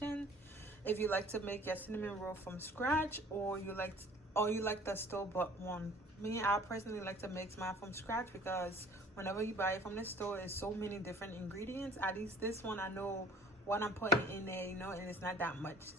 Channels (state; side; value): normal; both; correlation 0.51